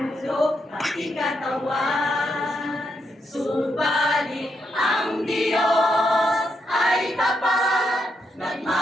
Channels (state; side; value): normal; both; correlation 0.81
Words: pati katawan. Subalit ang Diyos ay tapat,